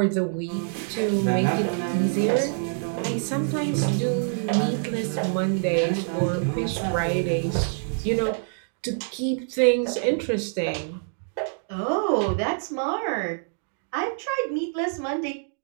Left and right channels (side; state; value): left; silent; digital silence